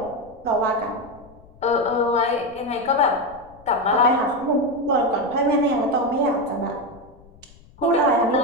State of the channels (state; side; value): noise; left; rumble, 25 dB below the sound